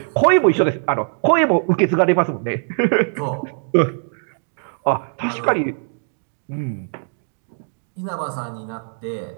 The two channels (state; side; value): silent; left; digital silence